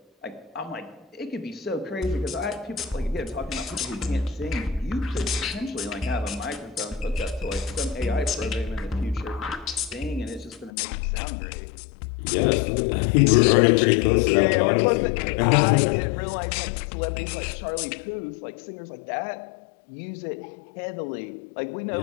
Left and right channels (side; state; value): right; drops out; at 10.7 s